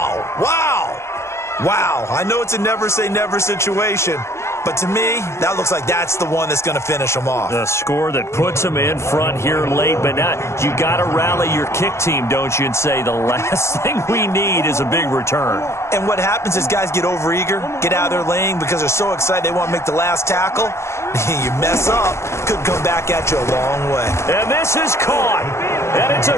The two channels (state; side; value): late; right; 0.13 ms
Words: Wow. Wow. I know it's a never say never situation, but to me, that looks like that's the one that's going to finish them off. The score that puts them in front here late, but not. You got to rally your kick team, don't you, and say the last thing we need is a big return. And what happens is guys get overeager, get out of their lane because they're so excited they want to make the last tackle. You mess up, could come back at you a long way. And this is caught, and it's a